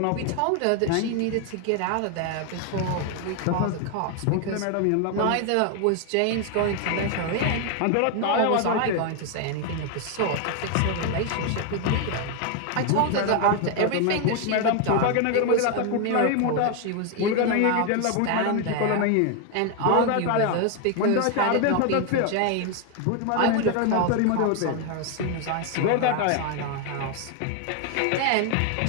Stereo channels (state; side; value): different; both; correlation 0.01